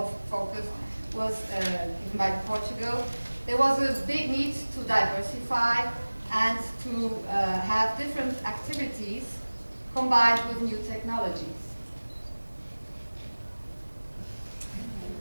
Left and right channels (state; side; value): inverted; both; correlation -1.00